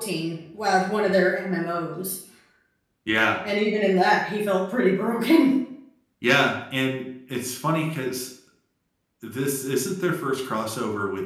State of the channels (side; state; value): both; identical; correlation 1.00